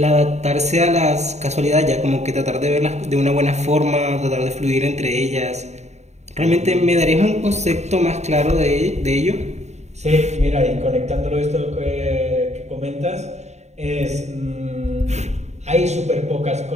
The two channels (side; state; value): left; late; 0.32 ms